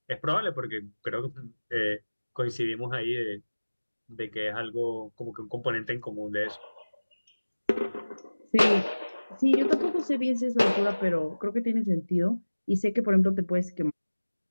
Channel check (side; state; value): both; inverted; correlation -1.00